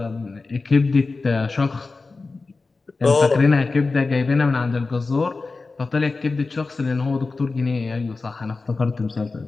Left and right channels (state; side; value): quieter; right; 3.8 dB